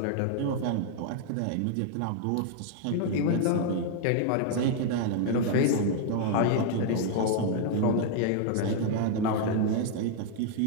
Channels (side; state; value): both; different; correlation 0.00